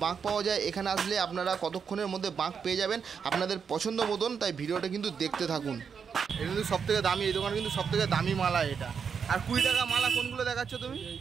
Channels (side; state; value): left; quieter; 6.5 dB